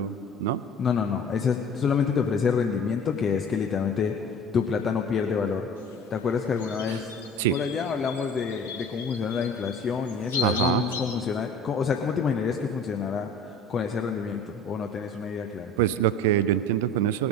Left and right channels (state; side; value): normal; both; correlation 0.42